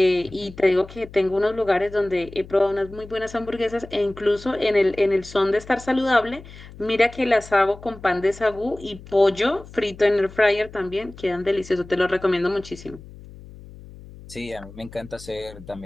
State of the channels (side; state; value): left; noise; hum, 18 dB below the sound